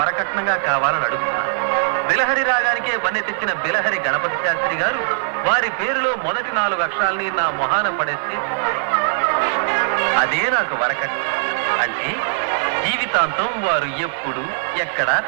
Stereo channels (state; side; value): silent; left; digital silence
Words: కావాలని అడుగుతున్నాను. బిలహరి రాగానికే వన్నె తెచ్చిన బిలహరి గణపతి శాస్త్రి గారు వారి పేరులో మొదటి 4 అక్షరాల్ని నా మొహాన పడేస్తే అదే నాకు వరకట్నం. అంటే జీవితాంతం వారు ఎప్పుడు ఎక్కడ